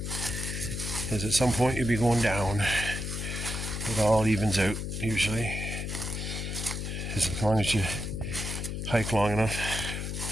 is at some point you'll be going down. It all evens out usually, as long as you hike long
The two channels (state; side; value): noise; left; hum, 4 dB below the sound